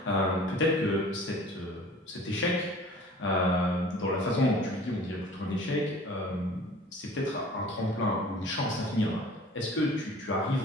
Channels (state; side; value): normal; both; correlation 0.46